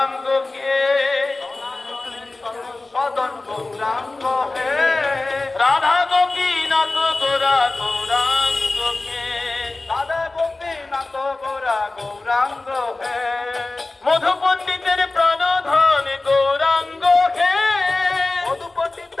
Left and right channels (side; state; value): right; quieter; 3.2 dB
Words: সদন গৌরাঙ্গ হে, রাধা গোপীনাথ গোরা গৌরাঙ্গকে, রাধা গোপীনাথ গোরা গৌরাঙ্গ হে, মধু পণ্ডিতের প্রাণধন গৌরাঙ্গ হে, মধু